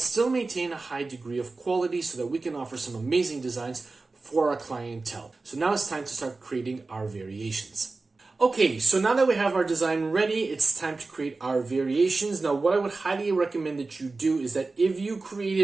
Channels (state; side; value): quieter; left; 3.7 dB